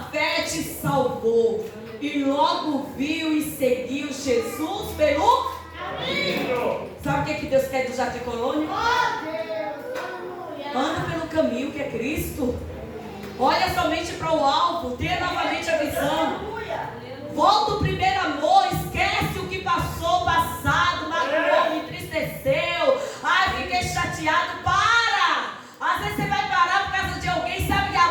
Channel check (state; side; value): identical; both; correlation 1.00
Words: fé te salvou. E logo viu e seguiu Jesus pelo caminho. Sabe o que Deus quer do Jardim Colônia? Anda pelo caminho que é Cristo. Olha somente para o alvo, tenha novamente a visão. Volta o primeiro amor, esquece o que passou, passado, magoou, me entristeceu. Ai, fiquei chateado. Para! Às vezes você vai parar por causa de alguém, sabe que a